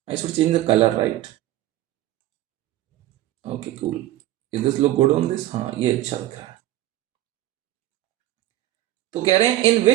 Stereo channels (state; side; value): quieter; left; 14.7 dB